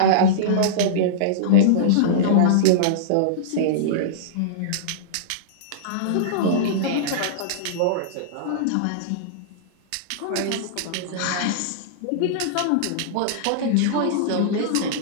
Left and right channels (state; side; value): different; both; correlation -0.03